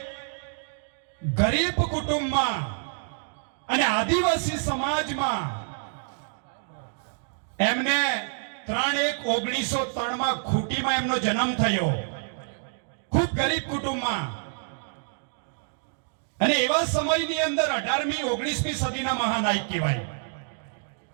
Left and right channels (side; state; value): left; silent; digital silence